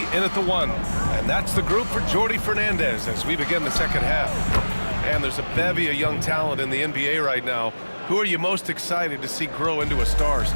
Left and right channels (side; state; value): both; inverted; correlation -1.00